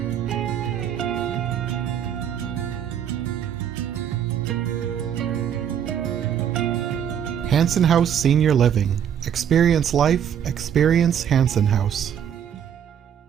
Hanson House Senior Living. Experience life, experience Hanson House.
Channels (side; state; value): left; quieter; 8.9 dB